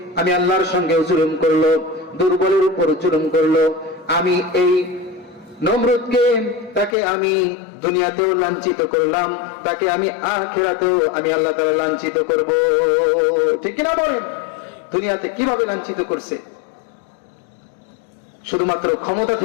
আমি আল্লাহর সঙ্গে জুলুম করলো, দুর্বলের উপর জুলুম করলো, আমি এই নমরুদকে, তাকে আমি দুনিয়াতেও লাঞ্ছিত করলাম, তাকে আমি আখিরাতেও আমি আল্লাহ তাআলা লাঞ্ছিত করব, ঠিক কিনা বলেন? দুনিয়াতে কিভাবে লাঞ্ছিত করছে? শুধুমাত্র ক্ষমতা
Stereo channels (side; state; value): right; drops out; at 7.0 s